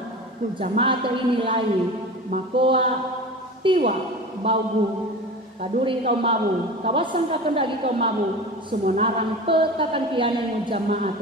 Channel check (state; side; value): normal; both; correlation 0.32